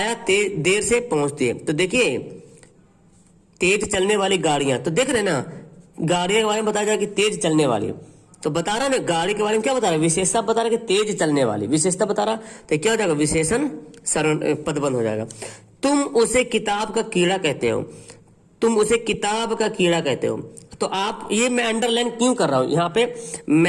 देर से पहुंचती है। तो देखिए तेज चलने वाली गाड़ियां, तो देख रहे ना, गाड़ियों के बारे में बताया जाए कि तेज चलने वाली, तो बता रहा ना गाड़ी के बारे में क्या बता रहा है? विशेषता बता रहा है कि तेज चलने वाली, विशेषता बता रहा, तो क्या हो जाएगा? विशेषण पदबंध हो जाएगा। तुम उसे किताब का कीड़ा कहते हो, तुम उसे किताब का कीड़ा कहते हो। तो आप, ये मैं अंडरलाइन क्यों कर रहा हूं यहाँ पे?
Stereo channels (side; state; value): both; identical; correlation 1.00